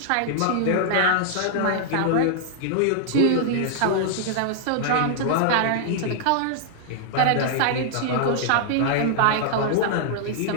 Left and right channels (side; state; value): both; different; correlation -0.01